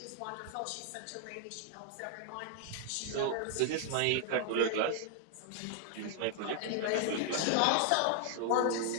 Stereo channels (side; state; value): both; different; correlation 0.00